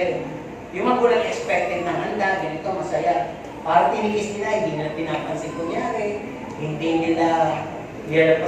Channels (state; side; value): identical; both; correlation 1.00